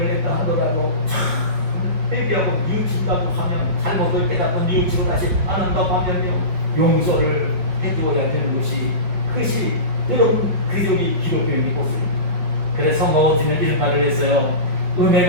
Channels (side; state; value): left; late; 5.1 ms